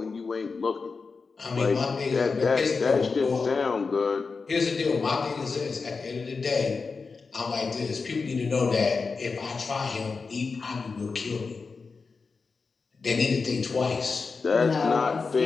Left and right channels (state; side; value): quieter; right; 4.6 dB